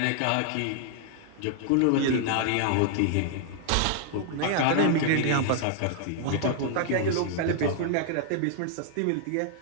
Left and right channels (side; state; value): both; different; correlation -0.01